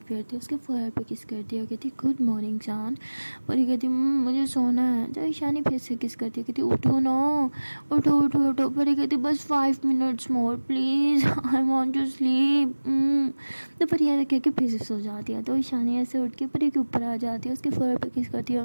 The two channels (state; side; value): inverted; both; correlation -1.00